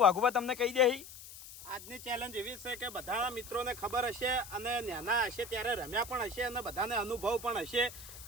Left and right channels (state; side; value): noise; left; hiss, 15 dB below the sound